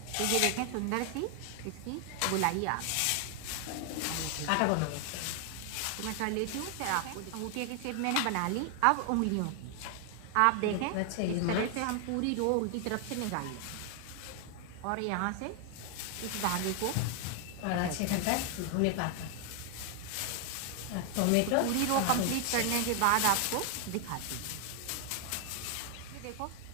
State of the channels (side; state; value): both; different; correlation 0.00